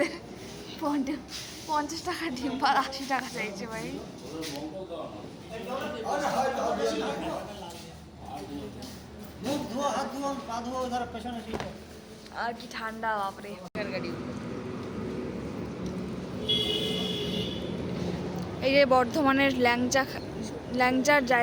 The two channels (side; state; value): both; identical; correlation 1.00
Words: 50 টাকা ডিম আর 80 টাকা চাইছে ভাই। মুখ ধোয়া, হাত ধোয়া, পা ধোয়া, ধর পেছনে ঠিক। আর কি ঠান্ডা বাপরে। এই যে বর্ধমানের ল্যাংচার